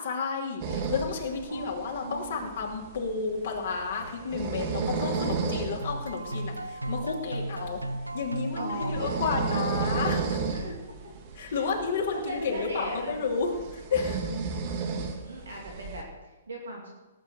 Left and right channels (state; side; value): inverted; both; correlation -0.49